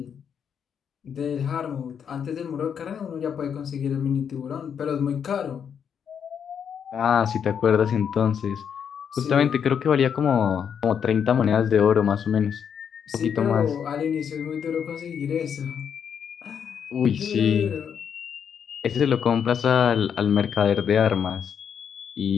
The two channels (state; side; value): quieter; right; 7.7 dB